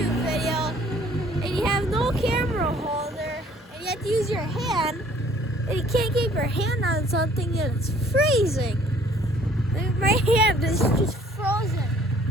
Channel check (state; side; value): normal; both; correlation 0.57